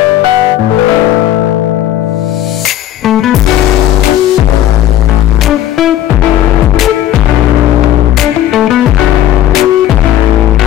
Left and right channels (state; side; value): quieter; right; 12.3 dB